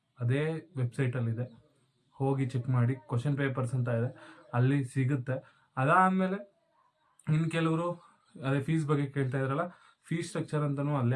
ಅದೇ ವೆಬ್ಸೈಟಲ್ಲಿದೆ, ಹೋಗಿ ಚೆಕ್ ಮಾಡಿ. ಕ್ವಶನ್ ಪೇಪರ್ಸ್ ಅಂತ ಇದೆ, ಅಲ್ಲಿ ಸಿಗುತ್ತೆ. ಅದಾದಮೇಲೆ ಇನ್ನು ಕೆಲವರು ಅದೇ ಫೀಸ್ ಬಗ್ಗೆ ಕೇಳ್ತಾ ಇದ್ರಲ್ಲ, ಫೀಸ್ ಸ್ಟ್ರಕ್ಚರ್ ಅಂತಲೂ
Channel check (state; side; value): identical; both; correlation 1.00